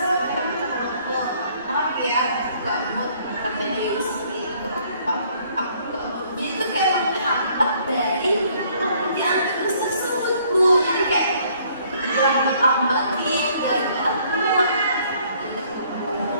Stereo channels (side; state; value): both; inverted; correlation -0.62